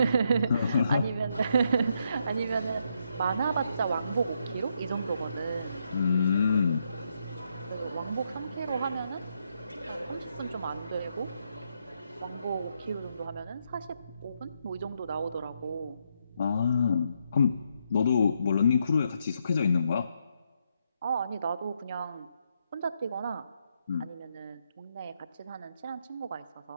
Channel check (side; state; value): both; inverted; correlation -0.78